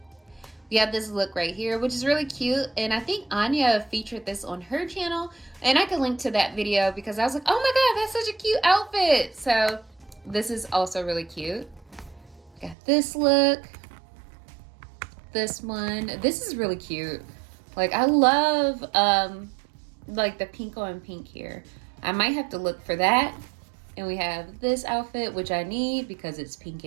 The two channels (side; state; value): left; drops out; at 12.8 s